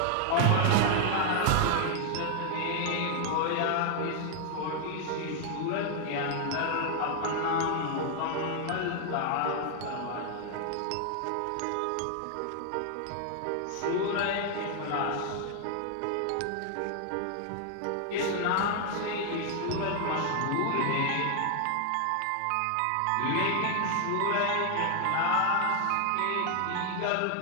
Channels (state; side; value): different; both; correlation 0.00